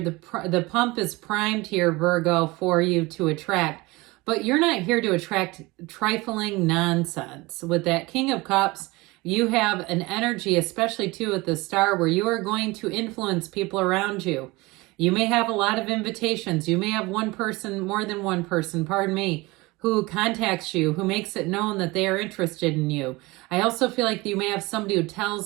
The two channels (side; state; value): left; quieter; 22.6 dB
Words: pump is primed here, Virgo, for you to attract. But you're not here to attract trifling nonsense. With that King of Cups, you have an energy, especially too with the Star, where you are going to influence people around you. You may have a lot of invitations. You may have one person, more than one person, pardon me, who contacts you, who makes it known that they are interested in you. I also feel like you may have somebody who